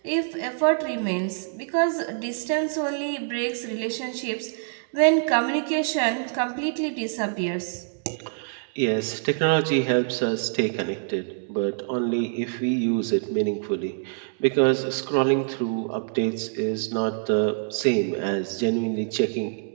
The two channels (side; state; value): left; silent; digital silence